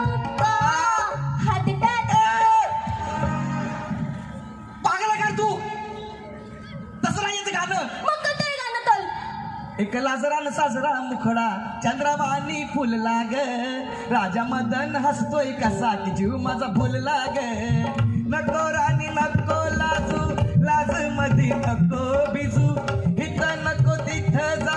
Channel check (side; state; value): both; identical; correlation 1.00